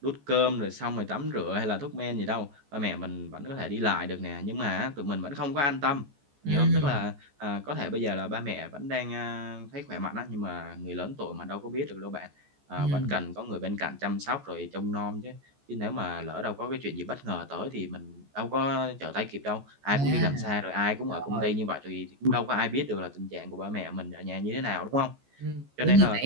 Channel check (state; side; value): late; left; 14 ms